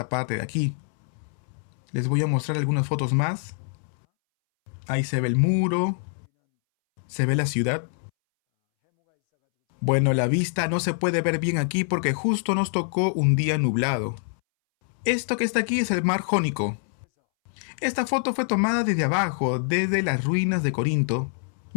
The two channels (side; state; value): right; silent; 62 dB below the other